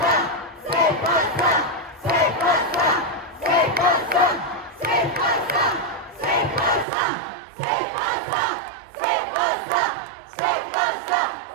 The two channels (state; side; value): drops out; left; at 6.9 s